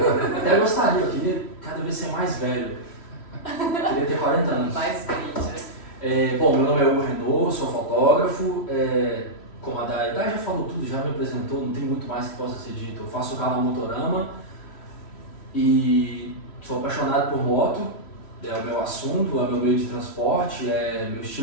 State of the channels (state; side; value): late; right; 3.1 ms